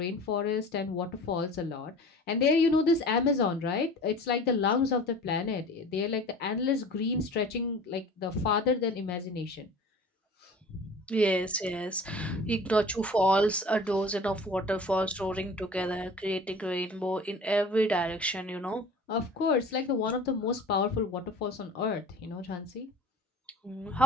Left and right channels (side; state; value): both; normal; correlation 0.42